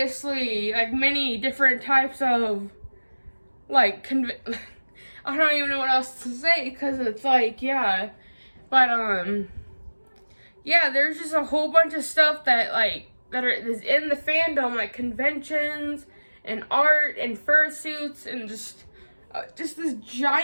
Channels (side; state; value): both; inverted; correlation -1.00